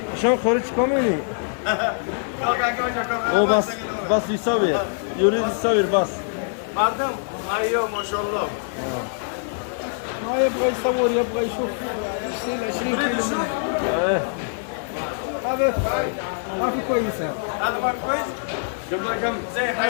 شلون خارج كاملي او بس يصور يريد يصور بس مردم ايوه ما شاء الله ما يبغى يصور يبغى يشوف يشيل 20 كيلو منه. ايه هذا ما في كويسه. هذا ما كويس جاب لك كم زي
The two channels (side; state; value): right; silent; 57 dB below the other